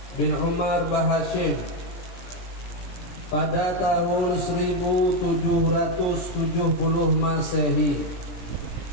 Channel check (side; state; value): right; late; 17 ms